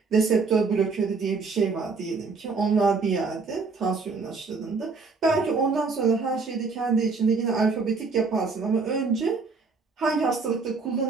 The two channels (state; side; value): quieter; left; 4.5 dB